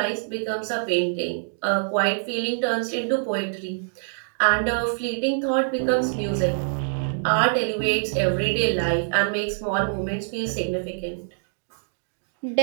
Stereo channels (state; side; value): silent; left; digital silence